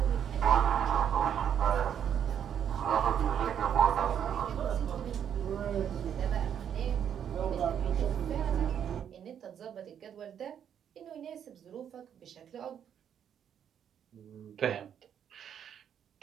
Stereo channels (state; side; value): quieter; left; 8.9 dB